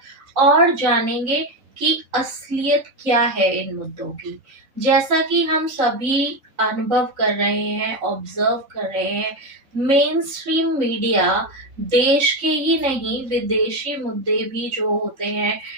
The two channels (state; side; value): late; left; 3.8 ms